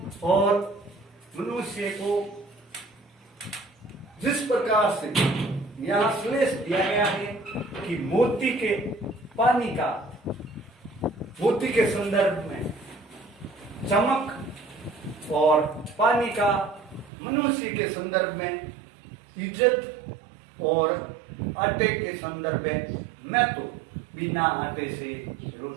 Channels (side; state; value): left; drops out; at 17.1 s